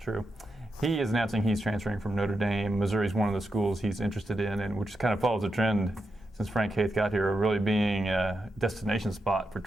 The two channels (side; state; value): both; normal; correlation 0.86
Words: True. He is announcing he's transferring from Notre Dame. Missouri's one of the schools he's interested in, and which kind of follows a trend since Frank Haith got here, of really being a destination spot for